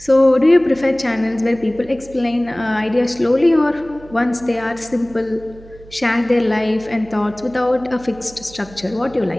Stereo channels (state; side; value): noise; right; hum, 21 dB below the sound